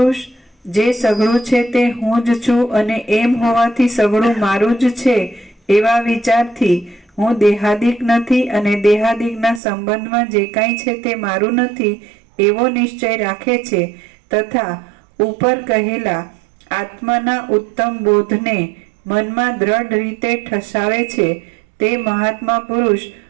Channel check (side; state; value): left; drops out; at 9.6 s